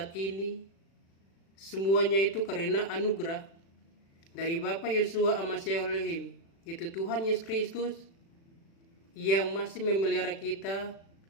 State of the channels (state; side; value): late; right; 36 ms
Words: ini. Semuanya itu karena anugerah dari Bapak Yosua Amasya Elohim, itu Tuhan Yesus Kristus yang masih memelihara kita